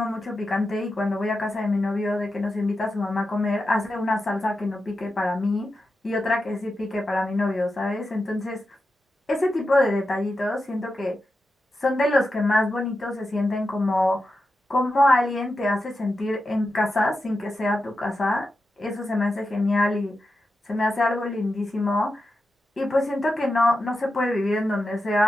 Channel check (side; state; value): both; normal; correlation 0.90